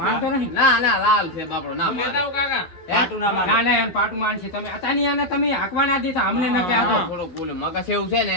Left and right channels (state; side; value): late; right; 11 ms